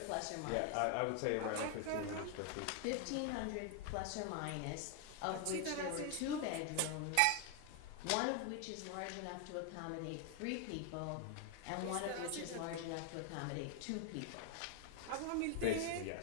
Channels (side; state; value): both; different; correlation 0.00